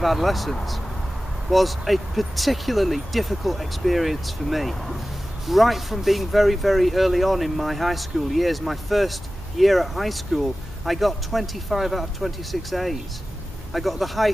adolescence, was a particularly difficult experience for me. Right from being very, very early on in my high school years, my first year at high school, I got 25 out of 26 A's. I got the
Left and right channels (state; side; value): normal; both; correlation 0.95